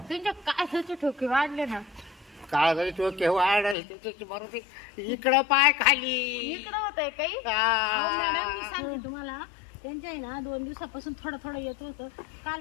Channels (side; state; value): right; drops out; at 3.8 s